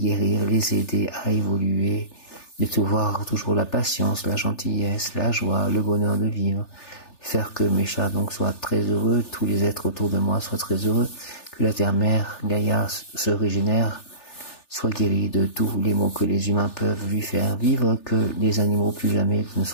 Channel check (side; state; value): right; late; 3.4 ms